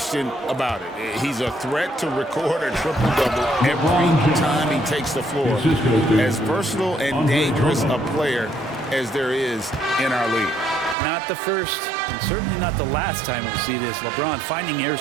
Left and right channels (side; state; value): left; drops out; at 11.0 s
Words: about it. He's a threat to record a triple-double every time he takes the floor. As versatile and dangerous a player as there is in our league. Not the first, and certainly not the last time we'll see this. LeBron finding